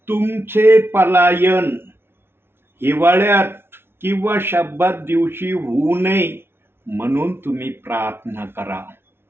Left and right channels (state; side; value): late; left; 0.11 ms